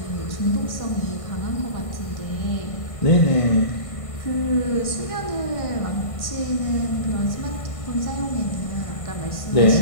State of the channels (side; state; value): right; late; 1.6 ms